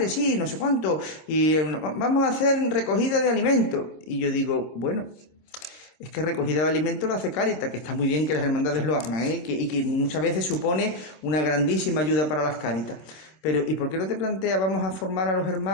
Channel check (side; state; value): right; late; 26 ms